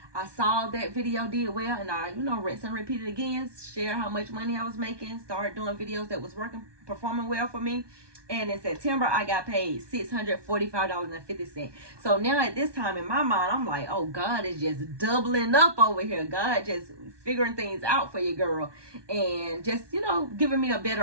I saw that video did well, and I, rinse and repeat it again, share how much money I was making, started doing videos that was working, performing well for me. And in September, I got paid $645.50. So now at this time in my mind, I'm like, oh, God is just doubling up over here. God just figuring things out for your girl, and just, giving me a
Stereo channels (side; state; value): left; late; 1.2 ms